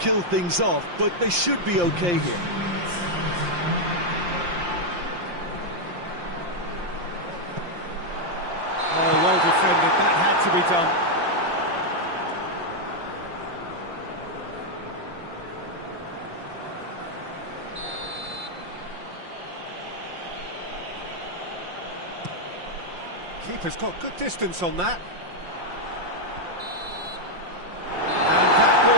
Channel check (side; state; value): left; late; 5.7 ms